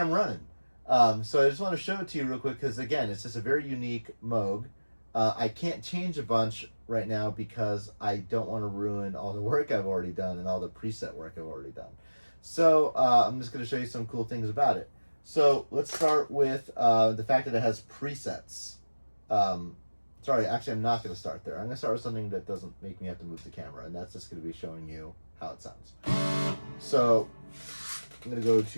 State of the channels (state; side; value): inverted; both; correlation -1.00